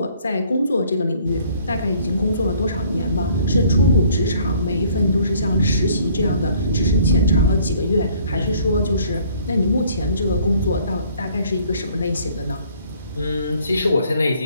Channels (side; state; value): both; inverted; correlation -0.59